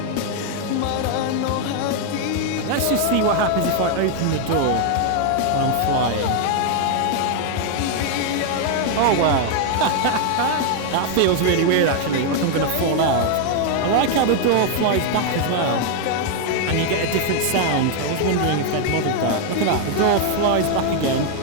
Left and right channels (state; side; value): different; both; correlation 0.00